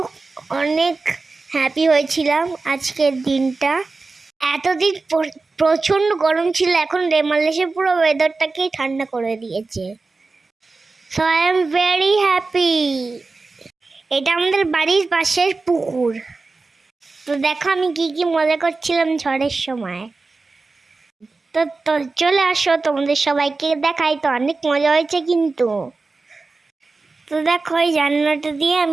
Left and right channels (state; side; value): quieter; left; 3.8 dB